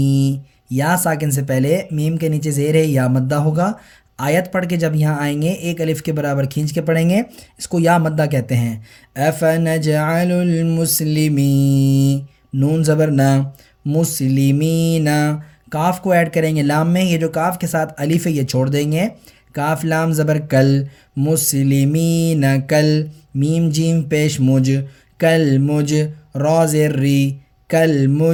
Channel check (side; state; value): both; identical; correlation 1.00